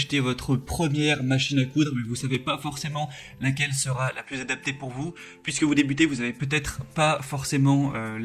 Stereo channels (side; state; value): both; identical; correlation 1.00